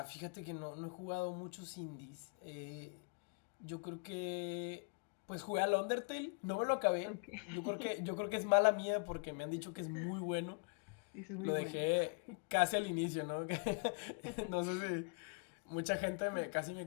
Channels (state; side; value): quieter; right; 37.3 dB